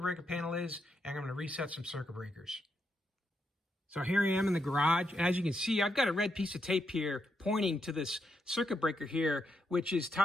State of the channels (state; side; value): normal; both; correlation 0.81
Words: panel is, and I'm going to reset some circuit breakers. So here I am in the garage, and as you can see, I've got a red piece of tape here pointing to this circuit breaker here, which is